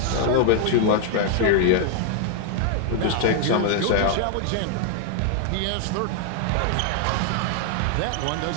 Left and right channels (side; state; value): both; different; correlation 0.00